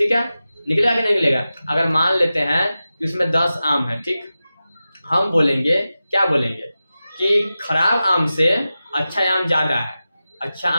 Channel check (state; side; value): inverted; both; correlation -0.94